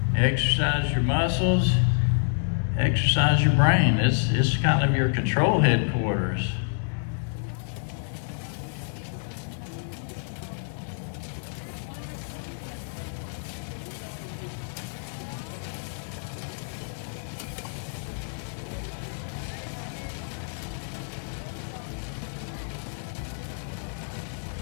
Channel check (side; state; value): right; silent; digital silence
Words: exercise your muscles, exercise your brain. It's kind of your control headquarters.